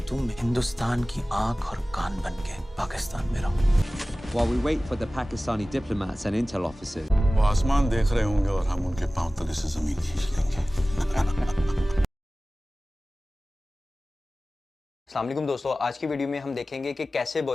तुम हिंदुस्तान की आंख और कान बन के पाकिस्तान में रहो। While we wait for the Pakistani diplomats and intel officers, वो आसमान देख रहे होंगे और हम उनके पांव तले से जमीन खींच लेंगे। अस्सलाम वालेकुम दोस्तों, आज की वीडियो में हम देखेंगे कि कैसे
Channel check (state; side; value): normal; both; correlation 0.97